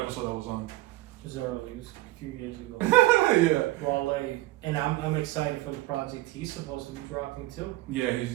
that was on. It was early. It was a few years ago. Yeah. Wale, and I'm excited for the project he's supposed to be dropping too. Yeah,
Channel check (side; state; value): left; quieter; 18.2 dB